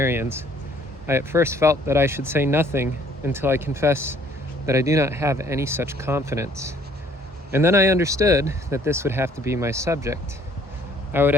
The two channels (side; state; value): both; normal; correlation 0.60